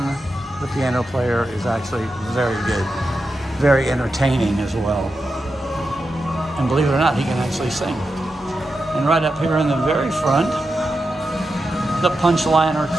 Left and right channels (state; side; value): normal; both; correlation 0.89